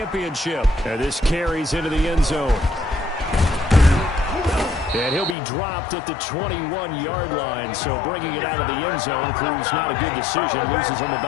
And this carries into the end zone. And he'll be dropped at the 21-yard line, so bringing it out of the end zone proves not a good decision. Loses him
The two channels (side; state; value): right; drops out; at 5.4 s